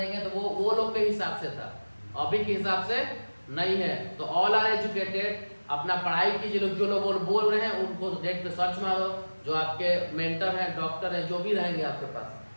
तो वो लोग के हिसाब से था, अभी के हिसाब से नहीं है। तो ऑल आर एजुकेटेड, अपना पढ़ाई कीजिए। लोग जो लोग बोल रहे हैं उनको नेट पे सर्च मारो, जो आपके मेंटर हैं, डॉक्टर हैं, जो भी रहेंगे आपके पास,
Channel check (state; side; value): inverted; both; correlation -1.00